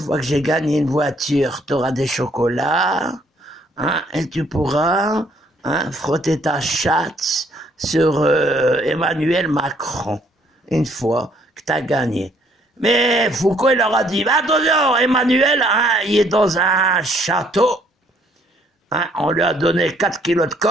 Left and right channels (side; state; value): both; normal; correlation 0.65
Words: que j'ai gagné une voiture, tu auras des chocolats, et tu pourras frotter ta chatte sur Emmanuel Macron, une fois que tu as gagné. Mais Foucault, il leur a dit, attention, Emmanuel, il est dans un château, on lui a donné 4 kilos de